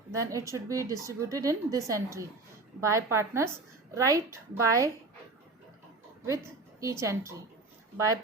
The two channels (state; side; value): quieter; left; 3.4 dB